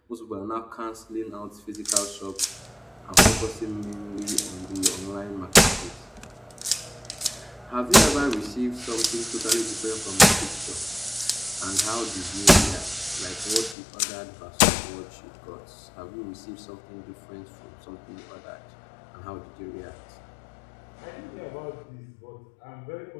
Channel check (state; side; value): drops out; right; at 13.8 s